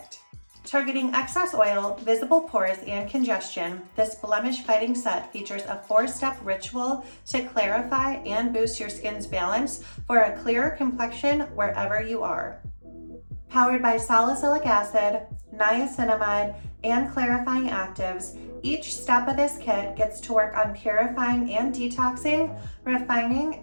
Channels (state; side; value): inverted; both; correlation -1.00